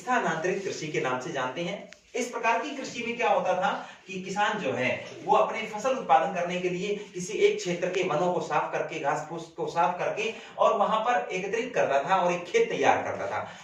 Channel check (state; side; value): identical; both; correlation 1.00